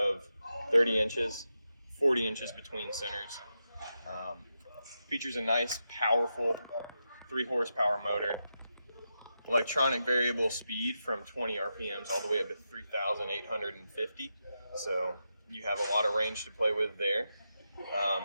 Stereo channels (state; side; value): inverted; both; correlation -0.88